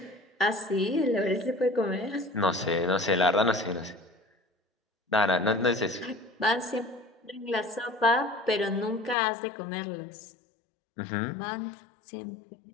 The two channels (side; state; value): right; drops out; at 9.2 s